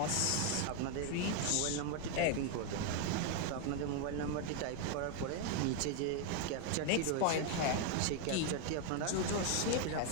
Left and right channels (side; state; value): both; different; correlation 0.01